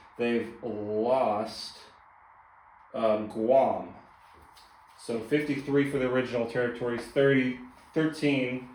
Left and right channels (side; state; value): both; identical; correlation 1.00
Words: They've lost Guam. So 53 for the original territories, 13